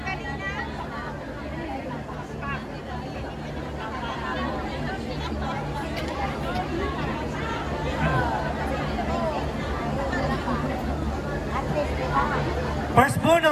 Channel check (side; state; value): both; identical; correlation 1.00